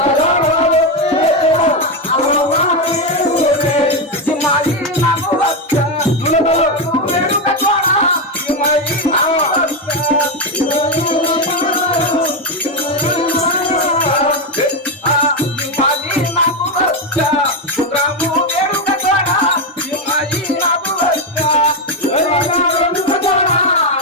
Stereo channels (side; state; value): both; normal; correlation 0.08